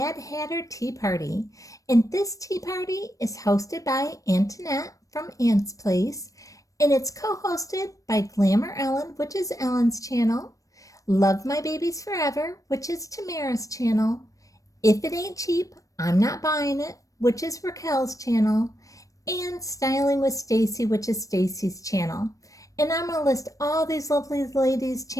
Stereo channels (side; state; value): right; late; 0.16 ms